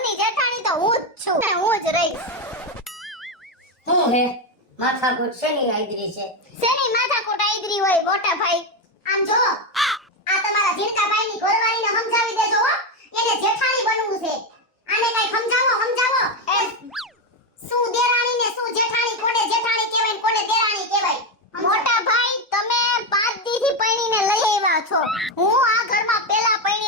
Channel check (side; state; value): both; normal; correlation 0.09